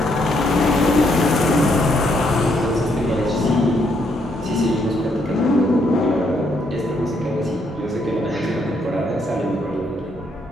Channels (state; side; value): normal; both; correlation 0.74